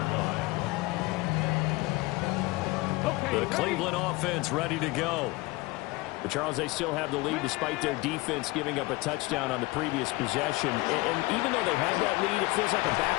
line. The Cleveland offense ready to go. But Charles, they still have the lead despite their defense giving up a touchdown on the previous possession. And even though they have that lead, it feels like a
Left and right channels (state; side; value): quieter; right; 22.1 dB